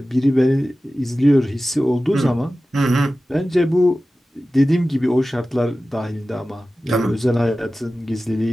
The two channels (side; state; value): both; normal; correlation 0.95